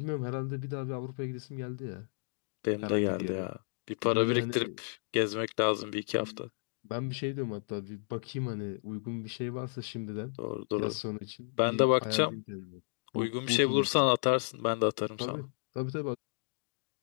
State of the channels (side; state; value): right; silent; digital silence